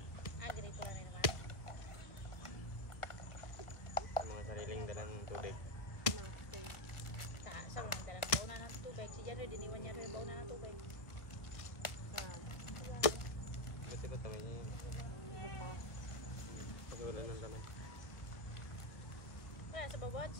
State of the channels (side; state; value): right; late; 1.2 ms